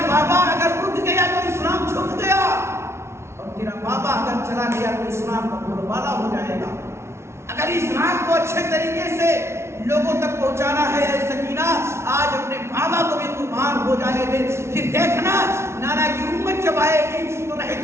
بابا اگر اٹھ گیا تو اسلام چھپ گیا، اور تیرا بابا اگر چلا گیا تو اسلام کا بولبالا ہو جائے گا۔ اگر اسلام کو اچھے طریقے سے لوگوں تک پہنچانا ہے، اے سکینہ آج اپنے بابا کو بھی قربان ہو جانے دے، پھر دیکھنا نانا کی امت جب آئے گی تو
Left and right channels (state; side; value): late; left; 0.13 ms